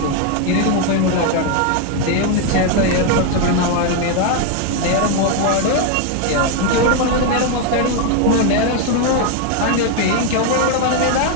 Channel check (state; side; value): different; both; correlation 0.01